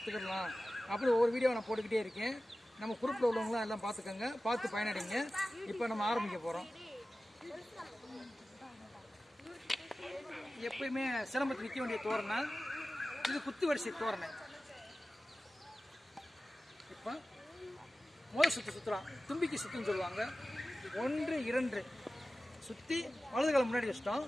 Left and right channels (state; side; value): normal; both; correlation 0.96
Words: அப்படி ஒவ்வொரு வீடியோ நான் போட்டுக்கிட்டே இருக்கேன். நம்ம குரூப்பில் உள்ளவங்களாம் எல்லாம் பார்த்துக்கோங்க, பார்த்து பயனடைங்க. இப்போ நம்ம ஆரம்பிக்க போகிறோம். எப்பயுமே சிலம்பத்தில் நிற்க வேண்டிய தோரணை இது குத்து வரிசை தோரணை. இப்போ முதல் சுற்றுலாம் தும்பிக்கை சுற்றுன்னு சொல்லுவாங்க. 1 2 சுற்றி வலது காலம் முன்னாடி வச்சிட்டோம்.